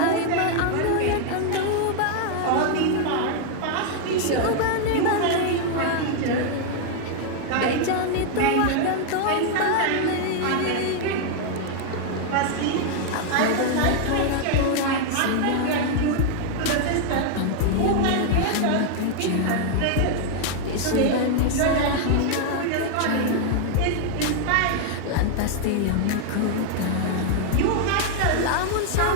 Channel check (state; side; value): different; both; correlation 0.00